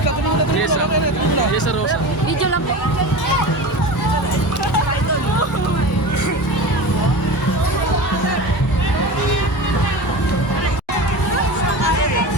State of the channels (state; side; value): normal; both; correlation 0.30